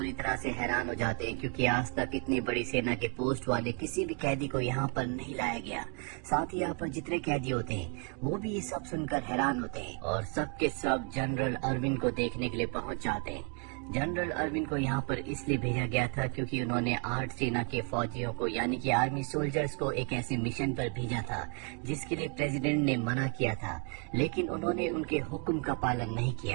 तरह से हैरान हो जाते हैं, क्योंकि आज तक इतनी बड़ी सेना के पोस्ट वाले किसी भी कैदी को यहाँ पर नहीं लाया गया। साथ ही यहाँ पर जितने कैदी होते हैं वो भी ये सब सुनकर हैरान होते हैं और सब के सब जनरल अर्विन को देखने के लिए पहुँच जाते हैं। जनरल अर्विन को यहाँ पर इसलिए भेजा गया था क्योंकि उन्होंने 8 सेना के फौजियों को यानी कि आर्मी सोल्जर्स को एक ऐसे मिशन पर भेजा था जिसके लिए प्रेसिडेंट ने मना किया था, लेकिन उन्होंने उनके हुक्म का पालन नहीं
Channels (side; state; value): left; quieter; 38.4 dB